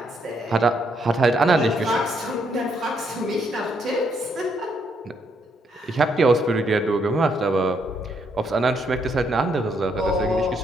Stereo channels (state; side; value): normal; both; correlation 0.74